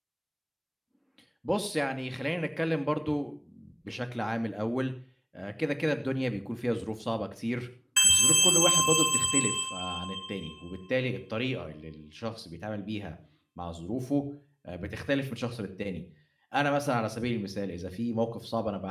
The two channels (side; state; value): both; identical; correlation 1.00